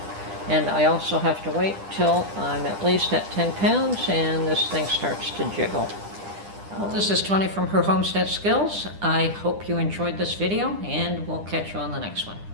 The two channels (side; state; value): left; late; 10 ms